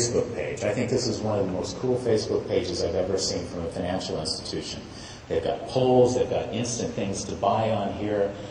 page. I think this is one of the most cool Facebook pages I've ever seen from a financial institution. They've got polls, they've got instant things to buy on here.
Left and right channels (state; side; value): identical; both; correlation 1.00